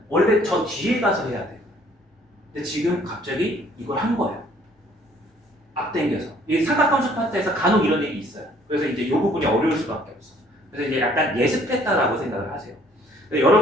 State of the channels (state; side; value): normal; both; correlation 0.60